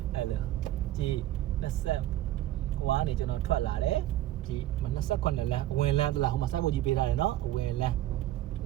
အဲ့လိုကြည့်20ဟိုကနေကျွန်တော်ထွက်လာတယ်ဒီ28လမ်းအဝင်လမ်းတလားဟိုမှာစိုက်ဖို့ကြီးပေးထားတယ်နော်အဝင်လမ်း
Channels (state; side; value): quieter; left; 14.0 dB